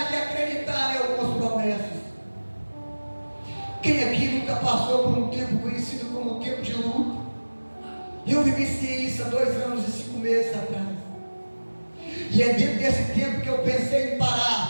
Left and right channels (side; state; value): both; inverted; correlation -1.00